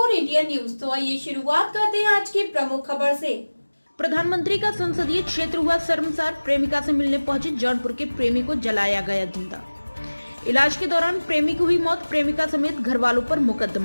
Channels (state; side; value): inverted; both; correlation -1.00